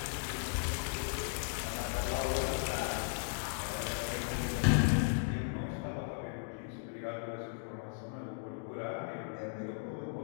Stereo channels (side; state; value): right; silent; digital silence